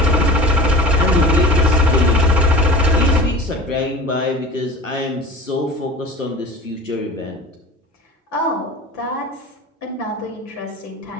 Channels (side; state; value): both; normal; correlation 0.36